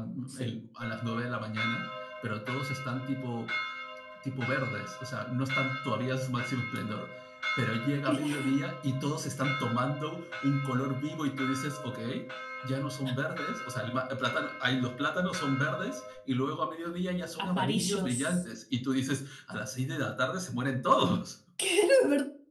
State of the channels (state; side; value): identical; both; correlation 1.00